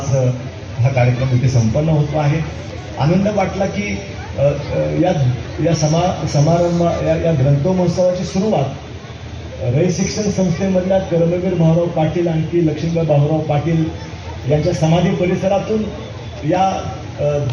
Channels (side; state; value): both; identical; correlation 1.00